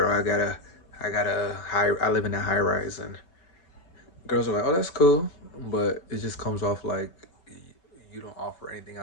I got a high, I live in a high rise, and girls are like, oh, that's cool, but it just comes off like you don't offer anything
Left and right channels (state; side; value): late; right; 5.3 ms